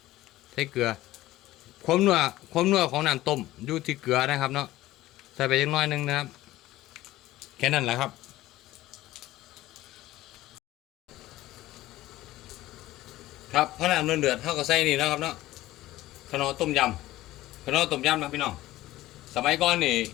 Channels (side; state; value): right; quieter; 16.2 dB